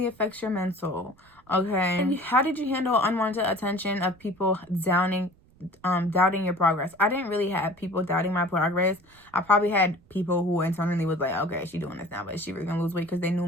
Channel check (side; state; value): right; noise; rumble, 30 dB below the sound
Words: affects your mental. Okay. And how did you handle unwanted attention of people doubting your progress? I didn't really have people doubting my progress. I probably had people who internally was like, okay, she doing this now, but is she really gonna lose weight? Because they knew